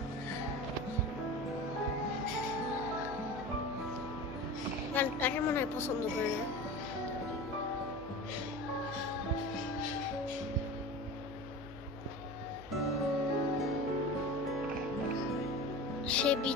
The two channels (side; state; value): left; noise; hum, 18 dB below the sound